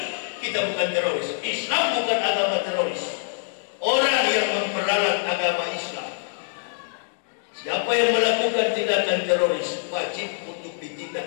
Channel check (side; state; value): right; silent; digital silence